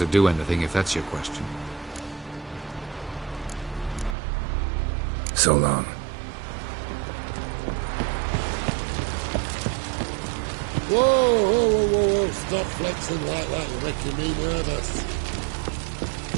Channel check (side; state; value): left; drops out; at 4.2 s